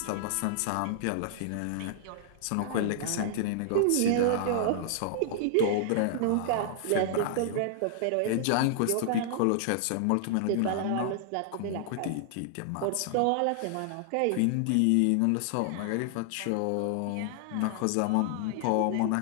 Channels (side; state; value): both; different; correlation -0.01